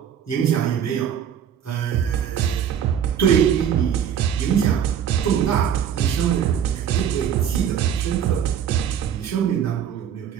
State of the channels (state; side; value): quieter; left; 8.9 dB